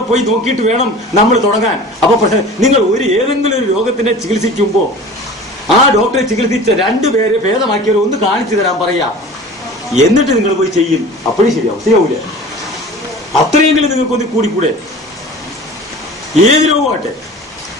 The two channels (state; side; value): normal; both; correlation 0.40